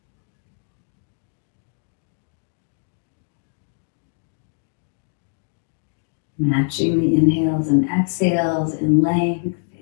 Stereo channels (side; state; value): right; silent; digital silence